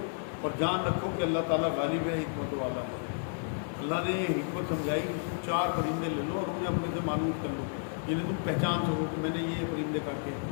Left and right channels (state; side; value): silent; right; digital silence